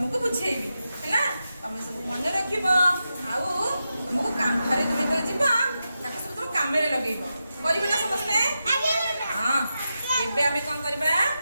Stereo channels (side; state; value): both; inverted; correlation -0.89